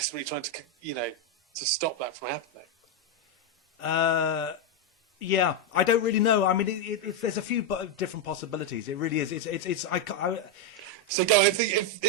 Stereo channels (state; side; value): normal; both; correlation 0.03